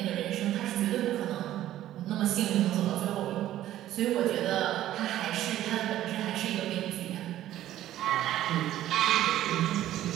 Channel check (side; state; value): left; quieter; 13.2 dB